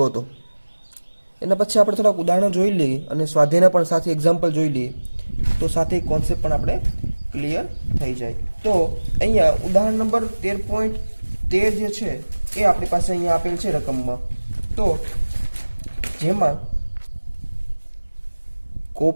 હતો. એના પછી આપણે થોડાક ઉદાહરણો જોઈ લઈએ અને સ્વાધ્યાયના પણ સાથે એક્ઝામ્પલ જોઈ લઈએ તો સાથે કોન્સેપ્ટ પણ આપણે ક્લિયર થઈ જાય. તો અહીંયા ઉદાહરણ નંબર 13.13 જે છે એ આપણી પાસે અહીંયા આપેલ છે રકમમાં. તો જેમાં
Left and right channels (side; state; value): both; inverted; correlation -1.00